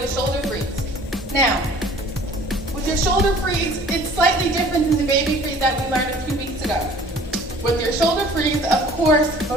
a shoulder freeze. Now, with your shoulder freeze, it's slightly different than the baby freeze that we learned a few weeks ago. With your shoulder freeze, of course,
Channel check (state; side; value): normal; both; correlation 0.50